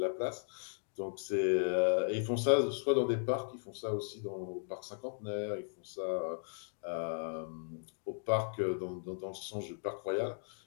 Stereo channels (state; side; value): silent; right; digital silence